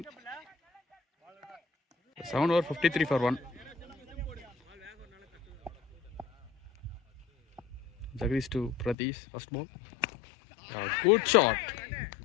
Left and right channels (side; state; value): right; drops out; at 9.0 s